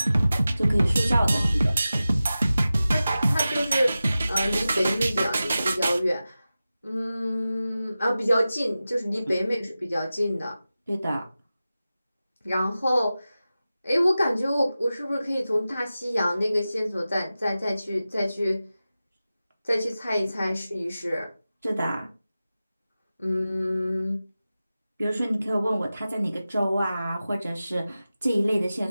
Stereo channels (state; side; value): inverted; both; correlation -0.94